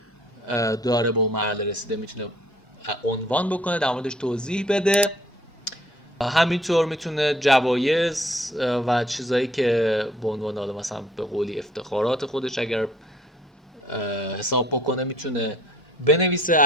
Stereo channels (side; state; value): both; normal; correlation 0.58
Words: داره به اون مرحله رسیده میتونه عنوان بکنه، در موردش توضیح بده. همینطور میتونه جوایز و چیزایی که به عنوان حالا مثلا به قولی افتخارات خودش اگر حساب بکنه میتونه بنویسه،